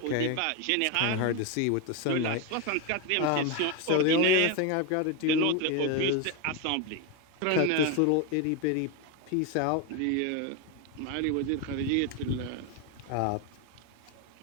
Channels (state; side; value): different; both; correlation 0.02